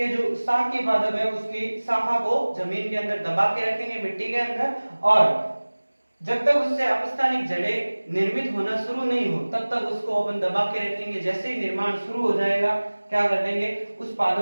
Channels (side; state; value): both; inverted; correlation -1.00